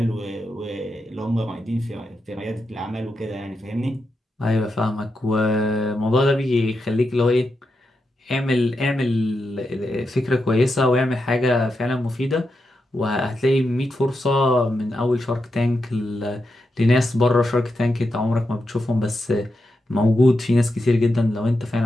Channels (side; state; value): both; normal; correlation 0.86